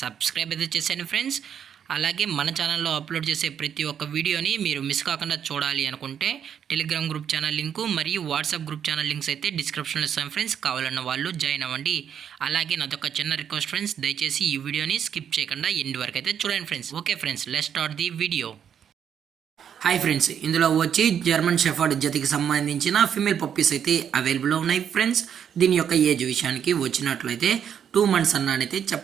సబ్స్క్రైబ్ అయితే చేసేయండి ఫ్రెండ్స్. అలాగే మన ఛానల్లో అప్లోడ్ చేసే ప్రతి ఒక్క వీడియోని మీరు మిస్ కాకుండా చూడాలి అనుకుంటే టెలిగ్రామ్ గ్రూప్ ఛానల్ లింకు మరియు వాట్సాప్ గ్రూప్ ఛానల్ లింక్స్ అయితే డిస్క్రిప్షన్లో ఇస్తాం ఫ్రెండ్స్. కావాలన్న వాళ్ళు జాయిన్ అవ్వండి. అలాగే నాదొక చిన్న రిక్వెస్ట్ ఫ్రెండ్స్, దయచేసి ఈ వీడియోని స్కిప్ చేయకుండా ఎండ్ వరకు అయితే చూడండి friends. Okay friends, let's start the video. Hi friends, ఇందులో వచ్చి జర్మన్ షెఫర్డ్ జతికి సంబంధించిన ఫీమేల్ పప్పీస్ అయితే అవైలబుల్లో ఉన్నాయి ఫ్రెండ్స్. దీని యొక్క ఏజ్ విషయానికి వచ్చినట్లయితే 2 months అన్నైతే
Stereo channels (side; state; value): left; quieter; 8.5 dB